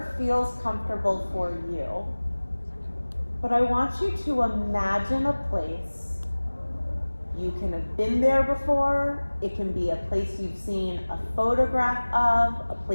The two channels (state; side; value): inverted; both; correlation -1.00